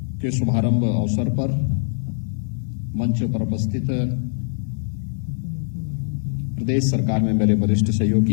के शुभारंभ अवसर पर मंच पर उपस्थित प्रदेश सरकार में मेरे वरिष्ठ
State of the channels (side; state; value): right; silent; digital silence